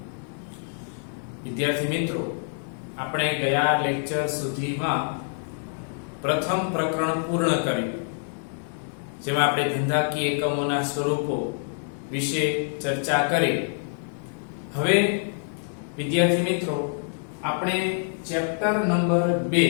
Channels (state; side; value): silent; right; digital silence